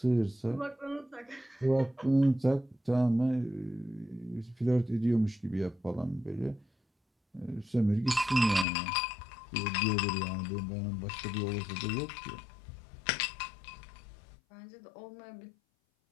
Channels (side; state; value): right; drops out; at 8.7 s